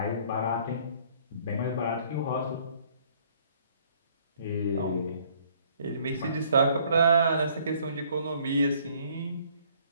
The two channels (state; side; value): inverted; both; correlation -0.61